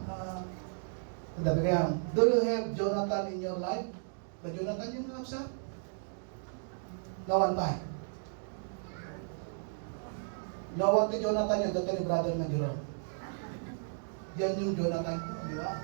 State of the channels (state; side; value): silent; left; digital silence